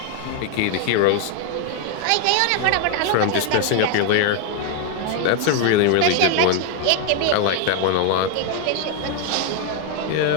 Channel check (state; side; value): different; both; correlation 0.01